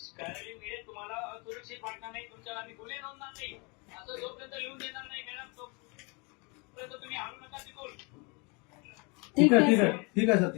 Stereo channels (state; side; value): quieter; right; 30.7 dB